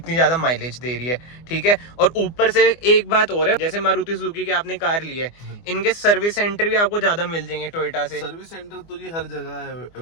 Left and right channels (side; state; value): right; late; 24 ms